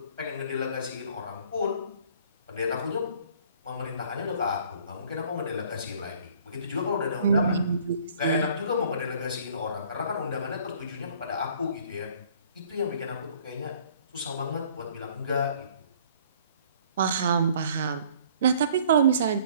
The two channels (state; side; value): inverted; both; correlation -0.55